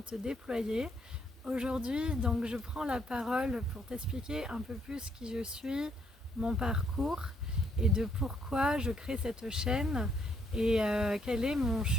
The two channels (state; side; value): normal; both; correlation 0.71